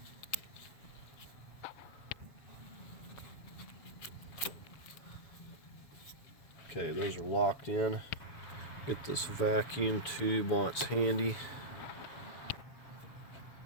Okay, those are locked in. Get this vacuum tube while it's handy.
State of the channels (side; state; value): right; late; 7.0 ms